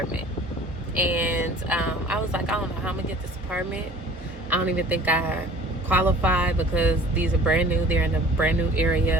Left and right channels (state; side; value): normal; both; correlation 0.48